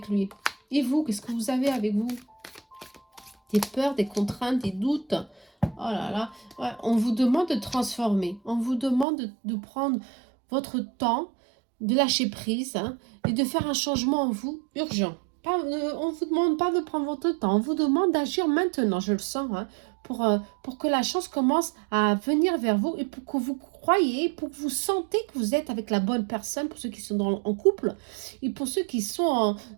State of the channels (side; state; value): left; drops out; at 9.1 s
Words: lui. Et vous, qu'est-ce que vous avez avec vous? Des peurs, des contraintes, des doutes. Oh là là. Ouais, on vous demande de transformer. On vous demande de prendre votre temps, de lâcher prise, hein, et de faire un changement en vous urgent. On ne vous demande pas de prendre votre temps. On vous demande d'agir maintenant, je le sens, hein, pour que la chance commence à venir vers vous et pour que vous croyez, pour que vous sentez que vous êtes avec la bonne personne, pour ceux qui sont en couple, et pour ceux qui sont